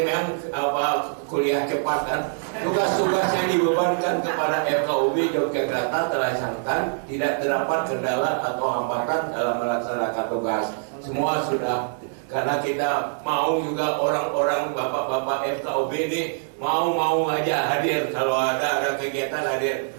memang kuliah cepat kan. Tugas-tugas yang dibebankan kepada FKUB Yogyakarta terlaksanakan, tidak terdapat kendala atau hambatan dalam melaksanakan tugas. Semua sudah, karena kita mau juga orang-orang bapak-bapak FKUB ini mau aja hadir kalau ada kegiatan hadir.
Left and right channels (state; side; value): silent; left; digital silence